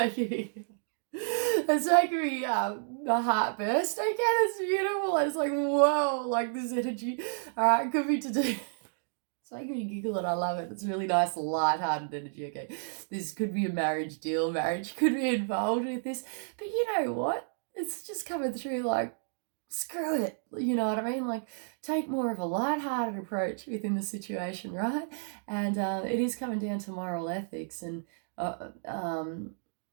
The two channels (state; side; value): silent; left; digital silence